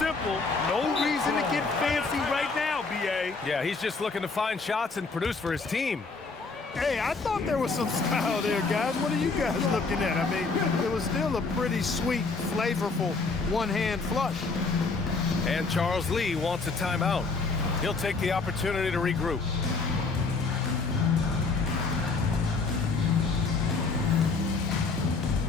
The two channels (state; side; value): quieter; right; 4.2 dB